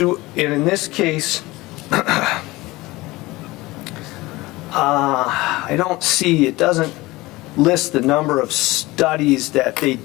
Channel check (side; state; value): right; quieter; 20.3 dB